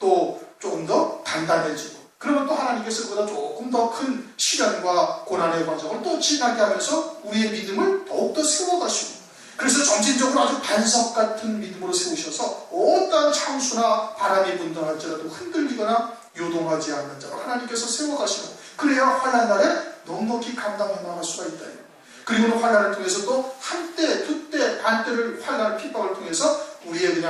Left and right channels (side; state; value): both; identical; correlation 1.00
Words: 조금 더 단단해지고, 그러면 또 하나님께서 그보다 조금 더 큰 시련과 고난의 과정을 또 지나게 하면서 우리의 믿음을 더욱더 세워가시고, 그래서 점진적으로 아주 반석 같은 믿음으로 세우셔서 어떠한 창수나 바람이 분다 할지라도 흔들리거나 요동하지 않는 자로 하나님께서 세워가시는, 그래야 환난 날에 넉넉히 감당해 나갈 수가 있다. 그리고는 환난을 통해서 또 한때, 두때, 반때를 환난을 핍박을 통해서 우리의